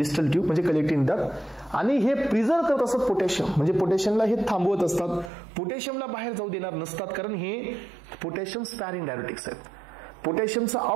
ट्यूब म्हणजे कलेक्टिंग डक्ट, आणि हे प्रिझर्व करत असतात पोटॅशियम, म्हणजे पोटॅशियमला हे थांबवत असतात, पोटॅशियमला बाहेर जाऊ देणार नसतात, कारण हे पोटॅशियम स्पॅरिंग डायरेटिक्स आहेत. पोटॅशियमचं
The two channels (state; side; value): drops out; left; at 5.3 s